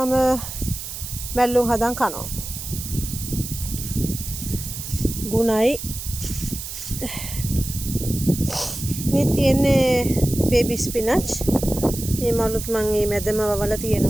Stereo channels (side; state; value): right; noise; hiss, 8 dB below the sound